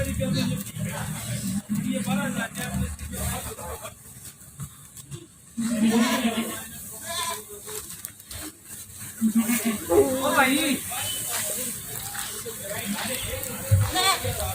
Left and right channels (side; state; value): both; identical; correlation 1.00